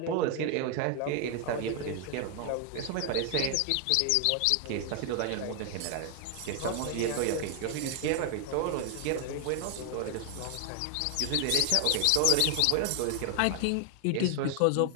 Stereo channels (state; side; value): different; both; correlation 0.00